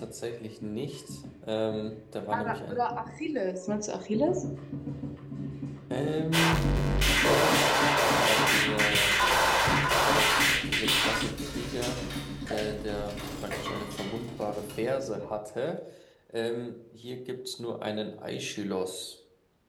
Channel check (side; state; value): both; identical; correlation 1.00